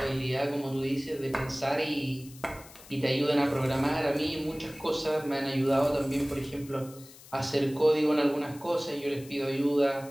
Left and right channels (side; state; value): left; noise; hiss, 20 dB below the sound